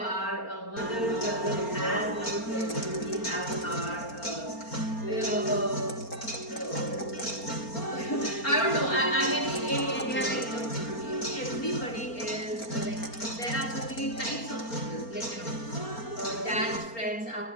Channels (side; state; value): right; late; 4.3 ms